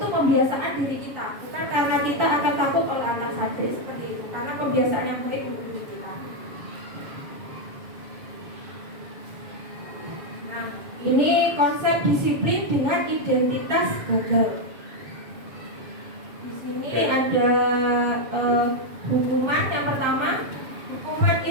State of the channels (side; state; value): left; late; 7.1 ms